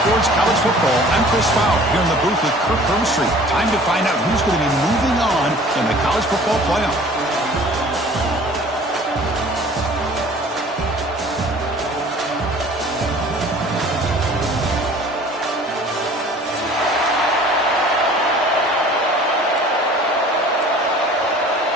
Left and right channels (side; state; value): both; normal; correlation 0.48